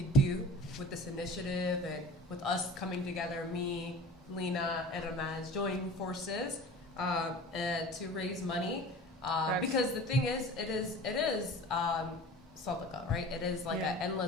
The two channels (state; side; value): normal; both; correlation 0.39